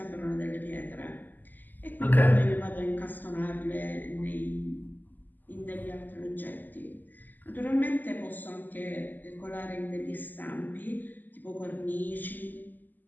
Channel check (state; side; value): late; right; 0.086 ms